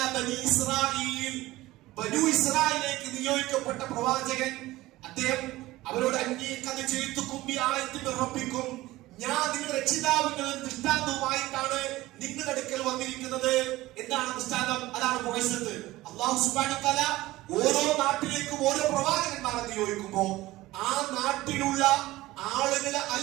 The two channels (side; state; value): left; quieter; 17.8 dB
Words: ബനി ഇസ്രായീൽ, ബനു ഇസ്രായേലിലേക്ക് നിയോഗിക്കപ്പെട്ട പ്രവാചകൻ, അദ്ദേഹം അവരോട് റബ്ബിക്കും, ഞാൻ നിങ്ങളുടെ രക്ഷിതാവിന്റെ ദൃഷ്ടാന്തവുമായിട്ടാണ് നിങ്ങളുടെ അടുക്കൽ വന്നിരിക്കുന്നത്. എന്താണ് ദൃഷ്ടാന്തം? അതാണ് മുഅ്ജിസത്ത്. അല്ലാഹു സുബ്ഹാനഹു വ തആല ഓരോ നാട്ടിലേക്കും ഓരോ പ്രവാചകന്മാരെ നിയോഗിക്കുമ്പോൾ ആ നാട്ടിലുള്ള ആളുകളെ